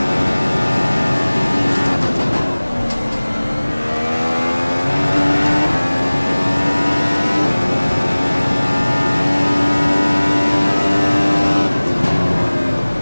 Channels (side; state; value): both; inverted; correlation -1.00